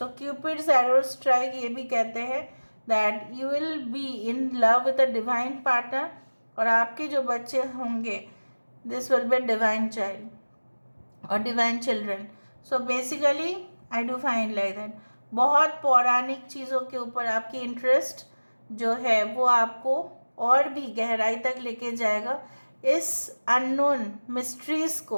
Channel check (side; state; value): both; inverted; correlation -1.00